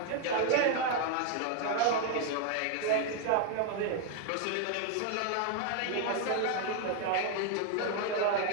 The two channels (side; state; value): both; different; correlation 0.00